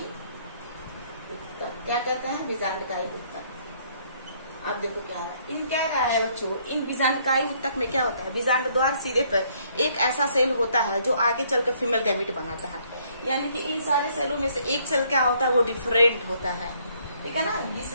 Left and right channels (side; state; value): both; inverted; correlation -0.66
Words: उत्तक। क्या कहते हैं, बीजांडकाई उत्तक। अब देखो क्या है, इन क्या रहा है बच्चों, इन बीजांडकाई उत्तक में क्या होता है, बीजांड द्वार सिरे पर एक ऐसा सेल होता है जो आगे चलकर फीमेल गैमीट बनाता है। यानी कि इन सारे सेलों में से एक सेल क्या होता है, वो डिफरेंट होता है, ठीक है ना। इस